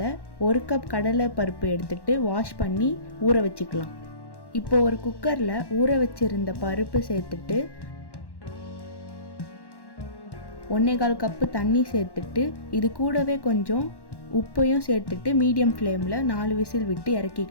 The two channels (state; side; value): late; right; 1.1 ms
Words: 1 கப் கடலை பருப்பு எடுத்துட்டு வாஷ் பண்ணி ஊற வச்சுக்கலாம். இப்போ ஒரு குக்கரில் ஊற வச்சிருந்த பருப்பு சேர்த்துட்டு 1/4 கப்பு தண்ணி சேர்த்துட்டு இது கூடவே கொஞ்சம் உப்பையும் சேர்த்துட்டு மீடியம் ஃப்ளேமில் 4 விசில் விட்டு